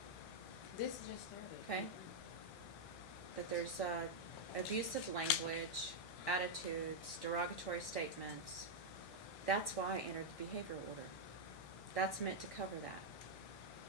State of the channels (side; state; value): right; late; 1.6 ms